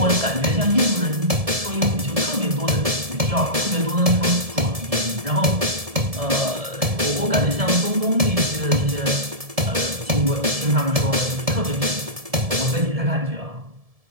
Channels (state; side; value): late; left; 1.7 ms